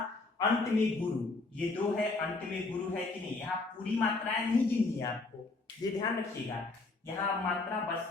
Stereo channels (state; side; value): quieter; right; 3.5 dB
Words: अंत में गुरु, ये 2 है, अंत में गुरु है कि नहीं। यहाँ पूरी मात्राएं नहीं गिननी है आपको, ये ध्यान रखिएगा। यहाँ मात्रा